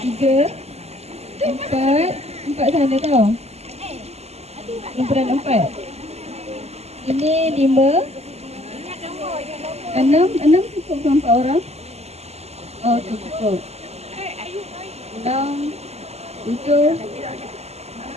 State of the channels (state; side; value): late; left; 0.30 ms